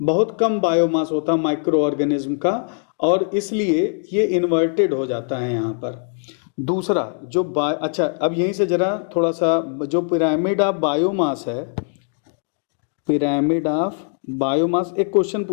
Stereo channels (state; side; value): silent; right; 62 dB below the other